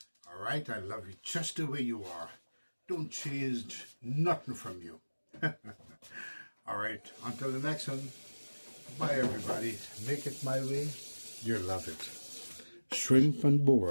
All right, I love you just the way you are. Don't change nothing from you. All right, until the next one. Bye, everybody. Make it my way. You'll love it. Shrimp and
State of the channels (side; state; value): both; inverted; correlation -1.00